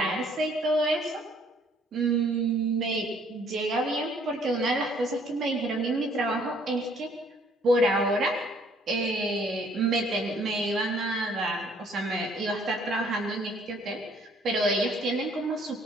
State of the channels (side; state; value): both; normal; correlation 0.61